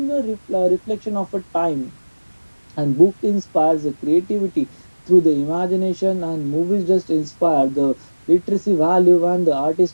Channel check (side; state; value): both; inverted; correlation -1.00